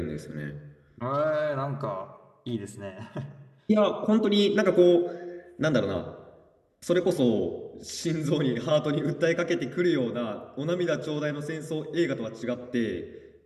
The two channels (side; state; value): both; identical; correlation 1.00